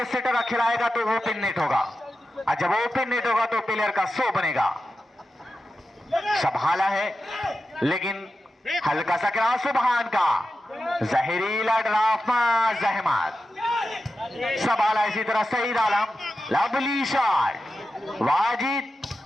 सेटर खिलाएगा तो वो ओपन नेट होगा, और जब ओपन नेट होगा तो प्लेयर का 100 बनेगा। संभाला है लेकिन हल्का सा क्रॉस सुबहान का, जहरीला ड्राफ्ट जहमत, संभाला इसी तरह सईद आलम, लवली शॉट, वाजिद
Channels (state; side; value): normal; both; correlation 0.92